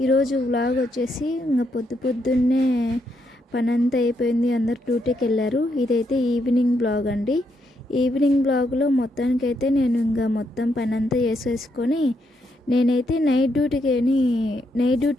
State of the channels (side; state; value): both; normal; correlation 0.78